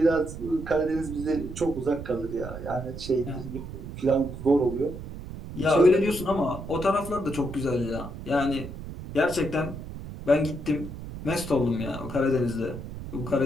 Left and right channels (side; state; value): right; noise; rumble, 10 dB below the sound